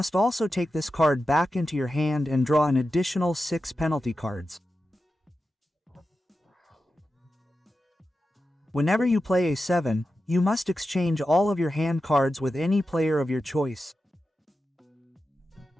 also take this card back into your hand and draw an additional 6 penalty cards. Whenever you play a 7, you must exchange all of your hand cards with any player of your choice.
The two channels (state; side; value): normal; both; correlation 0.91